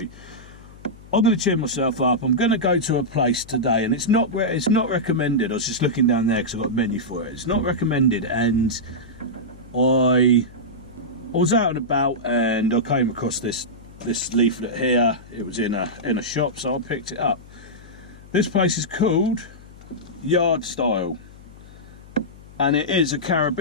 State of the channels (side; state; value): left; noise; hum, 20 dB below the sound